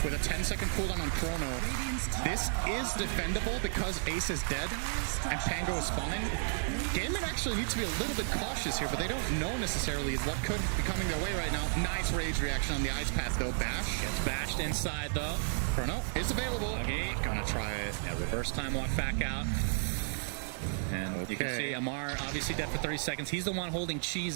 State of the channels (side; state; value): left; silent; digital silence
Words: with a 10-second cooldown on Chrono. This is defendable because Ace is dead and Pango is spawning. Gaiman actually needs to be a little bit cautious here, but they don't know necessarily what could be coming their way right now. Nice rage reaction on the ice path, though. Bash. Gets bashed inside, though. Chrono is available. Okay. Gonna try it. Yeah, reverse time walk back out. And you can see Amar obviously dead for 30 seconds. He's the one holding cheese